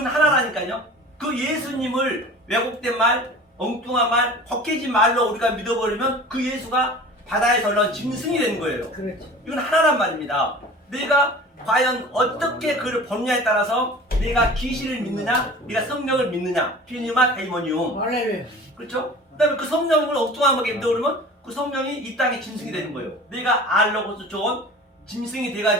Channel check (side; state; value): both; normal; correlation 0.40